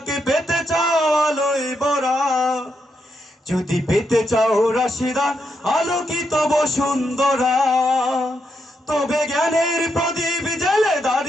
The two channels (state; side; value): normal; both; correlation 0.81